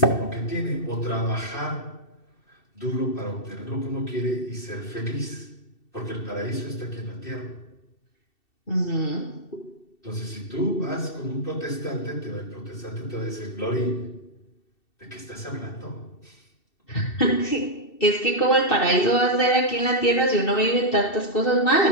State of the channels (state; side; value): late; right; 2.7 ms